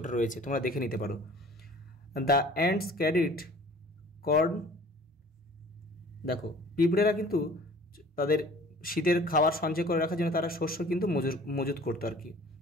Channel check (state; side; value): normal; both; correlation 0.49